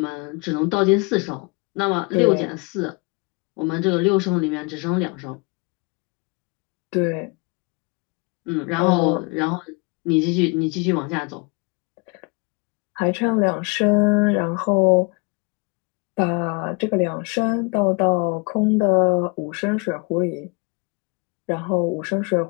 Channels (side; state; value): right; quieter; 29.9 dB